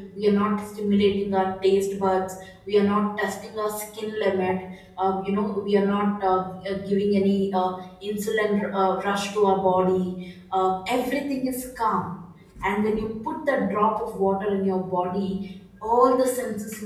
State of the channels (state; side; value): identical; both; correlation 1.00